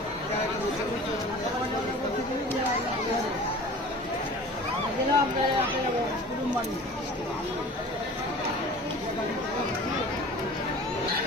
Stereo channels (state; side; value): normal; both; correlation 0.41